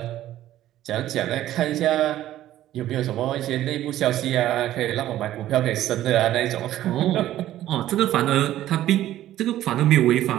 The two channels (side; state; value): left; quieter; 13.4 dB